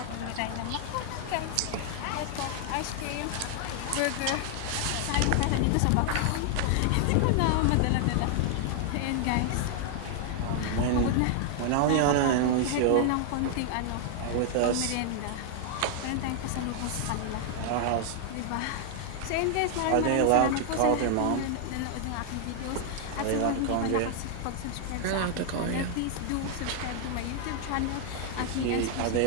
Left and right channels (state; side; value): different; both; correlation 0.00